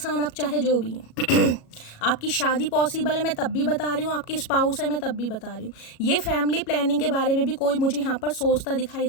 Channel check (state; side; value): late; right; 37 ms